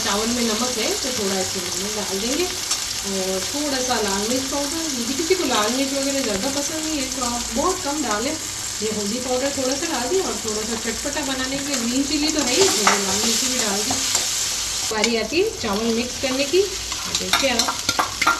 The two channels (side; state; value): both; identical; correlation 1.00